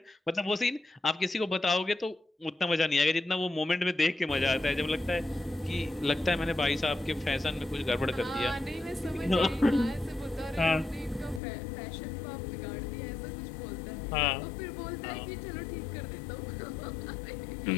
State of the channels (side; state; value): right; drops out; at 11.4 s